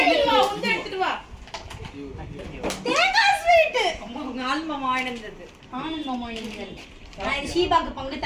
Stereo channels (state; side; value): identical; both; correlation 1.00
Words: எடுத்துட்டு வா தேங்காய் ஸ்வீட் ஆல்மமா வாங்கினது ஆனந்தமா இருந்தது நான் இது ஷீபாக்கு பங்கு